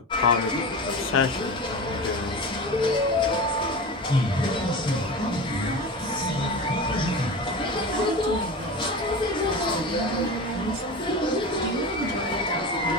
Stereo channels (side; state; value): both; normal; correlation 0.29